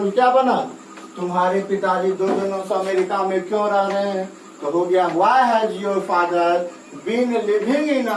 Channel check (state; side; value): identical; both; correlation 1.00